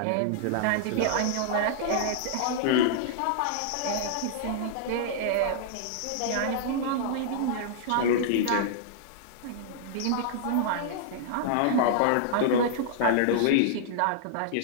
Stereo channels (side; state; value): both; different; correlation -0.01